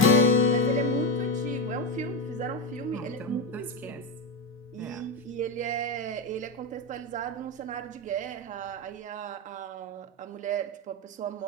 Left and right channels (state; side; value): normal; both; correlation 0.12